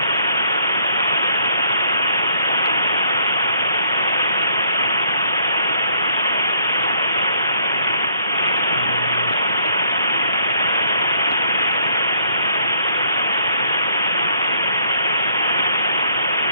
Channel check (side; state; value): both; inverted; correlation -0.65